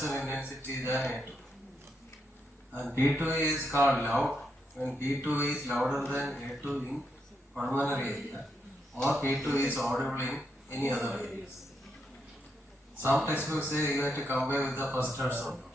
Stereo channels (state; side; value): normal; both; correlation 0.81